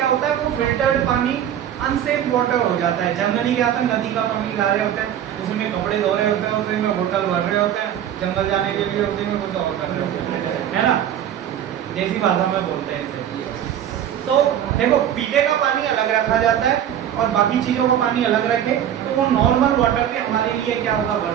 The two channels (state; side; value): quieter; left; 10.3 dB